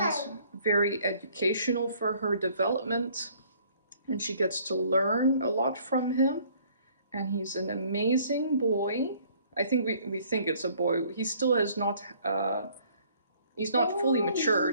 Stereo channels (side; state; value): both; inverted; correlation -0.59